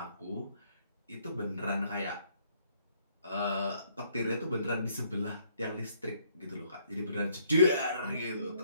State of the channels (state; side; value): inverted; both; correlation -0.67